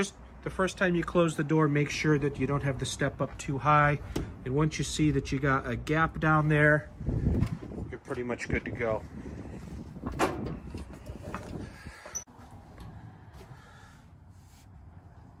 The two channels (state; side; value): identical; both; correlation 1.00